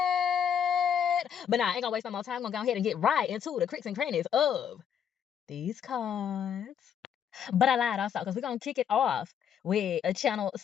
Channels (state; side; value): quieter; right; 8.4 dB